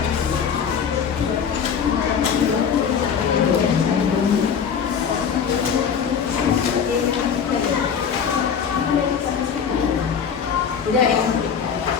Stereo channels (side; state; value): right; quieter; 7.1 dB